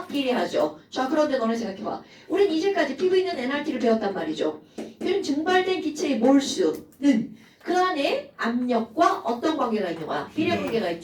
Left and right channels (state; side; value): identical; both; correlation 1.00